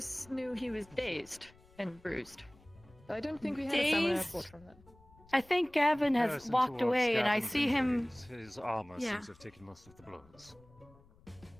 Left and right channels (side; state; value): left; noise; rumble, 26 dB below the sound